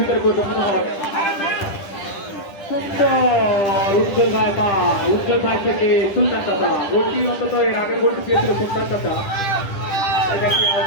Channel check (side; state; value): right; late; 10 ms